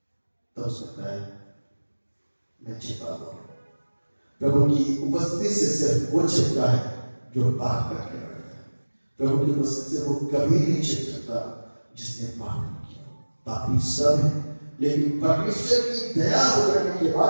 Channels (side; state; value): both; inverted; correlation -1.00